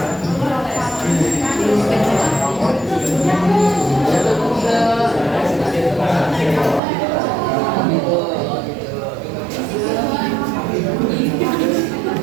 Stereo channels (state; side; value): drops out; left; at 6.8 s